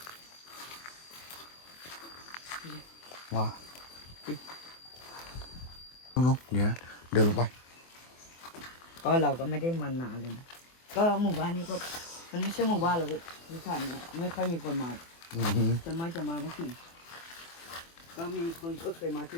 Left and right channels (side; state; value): right; late; 24 ms